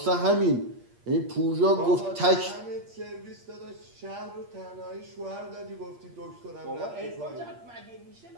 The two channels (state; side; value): late; left; 8.5 ms